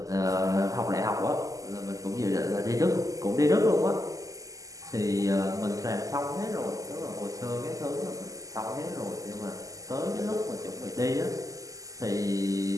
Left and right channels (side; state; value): left; late; 0.17 ms